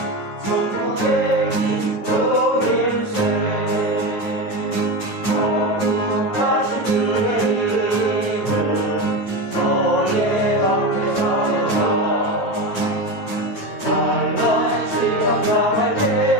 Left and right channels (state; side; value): late; right; 9.2 ms